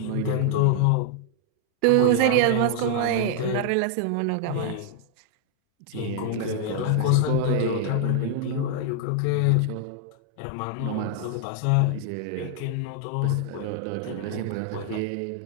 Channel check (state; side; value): different; both; correlation 0.00